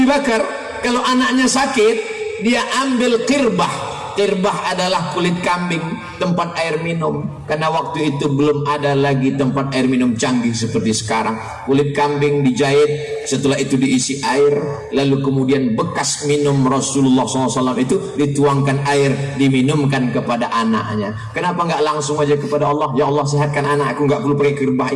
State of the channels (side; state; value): both; identical; correlation 1.00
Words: Bakar, kalau anaknya sakit, dia ambil qirbah, Kirbah adalah kulit kambing, tempat air minum. Karena waktu itu belum ada lagi tempat air minum canggih seperti sekarang. Kulit kambing dijahit, setelah itu diisi air, lalu kemudian bekas minum Rasulullah SAW itu dituangkan air, diminumkan kepada anaknya. Kenapa nggak langsung aja kepada Allah? Ya Allah, sehatkan anakku, nggak perlu pakai kirbah,